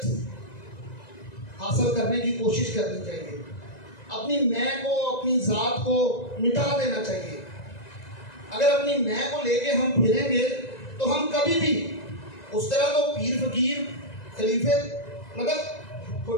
حاصل کرنے کی کوشش کرنی چاہیے. اپنی میں کو, اپنی ذات کو مٹا دینا چاہیے. اگر اپنی میں کو لے کے ہم پھریں گے تو ہم کبھی بھی اس طرح تو پیر فقیر خلیفے مطلب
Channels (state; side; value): late; right; 1.9 ms